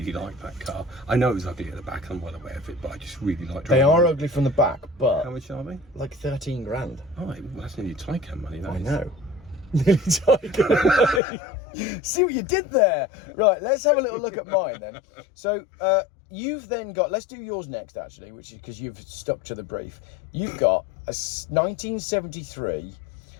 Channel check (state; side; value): drops out; right; at 11.2 s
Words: liked that car. I know it was ugly at the back, I'm well aware of it, but I just really liked driving. They are ugly from the back, but... How much are they? Like 13 grand. Oh, well, that's nearly Taycan money, that I is. know. Nearly Taycan money. See what you did there? Right, let's have a little look at mine then. So, you've then got... Let's do yours next, actually, which is because you've stuck to the brief. You've got a 1973...